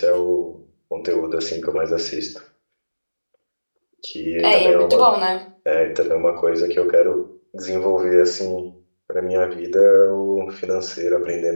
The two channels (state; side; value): inverted; both; correlation -1.00